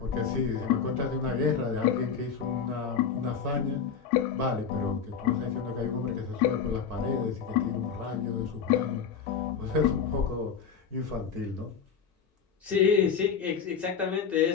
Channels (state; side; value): quieter; right; 6.6 dB